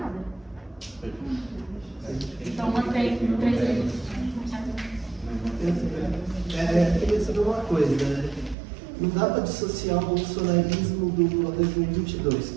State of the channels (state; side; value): drops out; left; at 8.6 s